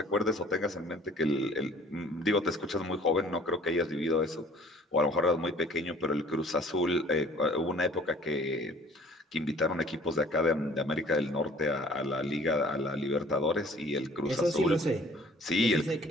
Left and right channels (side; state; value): both; normal; correlation 0.53